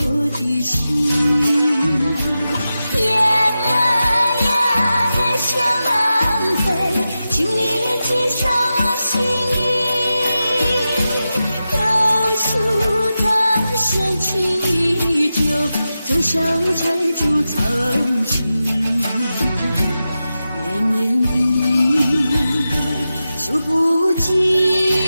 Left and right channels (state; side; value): inverted; both; correlation -0.92